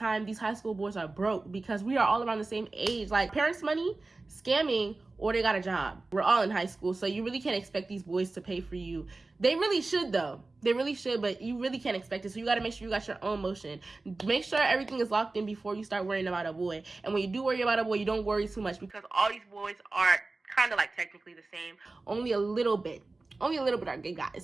these high school boys are broke because we are all around the same age. Like, parents' money, scamming, or they got a job. We're all in high school, so you really can't expect these boys to pay for you. They really should, though. They really should, but you really can't expect it. So you got to make sure you got your own motion. Make sure everything is locked in before you start worrying about a boy. And when you do worry about a boy, you don't worry too much because all these boys are kind of like technically the same. Only a little bit are gay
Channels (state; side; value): quieter; left; 3.4 dB